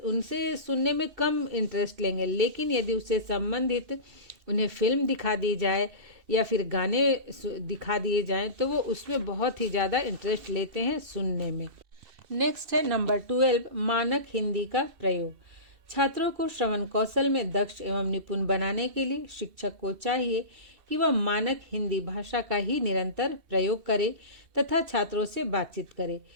उनसे सुनने में कम इंटरेस्ट लेंगे, लेकिन यदि उससे संबंधित उन्हें फिल्म दिखा दी जाए या फिर गाने दिखा दिए जाएं तो वो उसमें बहुत ही ज़्यादा इंटरेस्ट लेते हैं सुनने में। नेक्स्ट है नंबर 12, मानक हिंदी का प्रयोग। छात्रों को श्रवण कौशल में दक्ष एवं निपुण बनाने के लिए शिक्षक को चाहिए कि वह मानक हिंदी भाषा का ही निरंतर प्रयोग करे तथा छात्रों से बातचीत करे,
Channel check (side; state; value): left; late; 2.7 ms